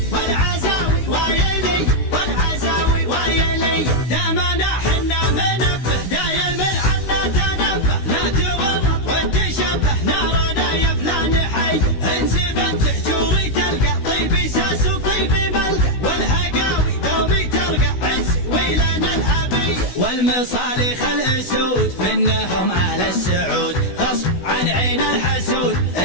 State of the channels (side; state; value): right; late; 16 ms